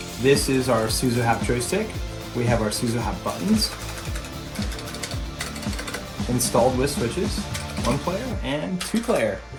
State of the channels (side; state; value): both; identical; correlation 1.00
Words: This is our SUZO HAPP joystick. We have our SUZO HAPP buttons installed with switches, 1 player and 2 player.